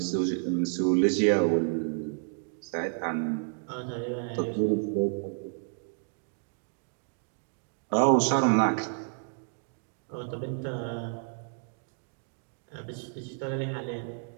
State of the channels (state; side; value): silent; left; 57 dB below the other